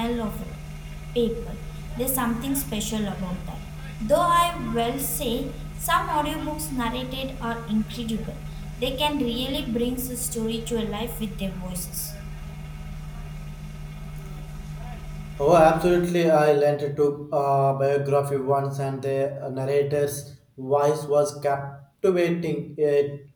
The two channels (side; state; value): both; identical; correlation 1.00